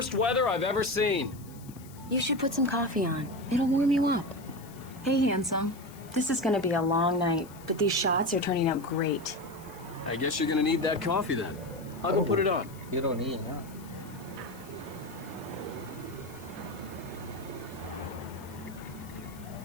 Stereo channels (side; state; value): left; noise; hiss, 22 dB below the sound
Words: weather I've ever seen. You should put some coffee on. It'll warm you up. Hey, handsome. This is gonna be a long night, but these shots are turning out great. I guess you're gonna need that coffee then. I'll go put it on. You don't need it, huh?